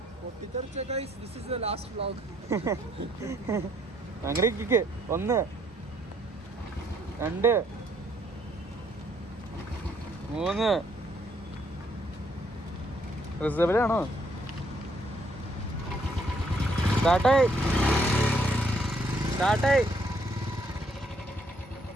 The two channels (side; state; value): both; normal; correlation 0.68